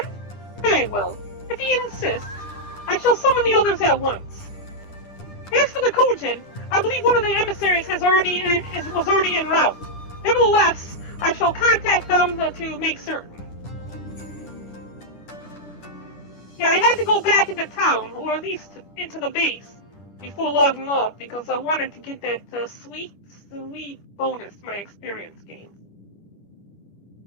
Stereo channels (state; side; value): late; right; 10 ms